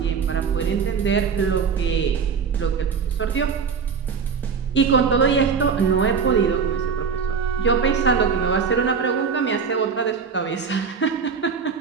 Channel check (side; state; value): left; quieter; 6.0 dB